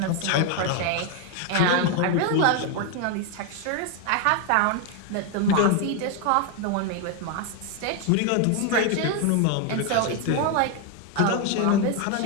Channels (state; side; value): different; both; correlation 0.01